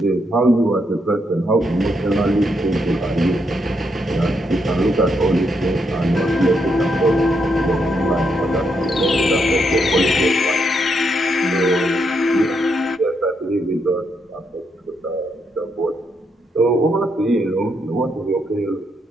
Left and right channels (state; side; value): normal; both; correlation 0.78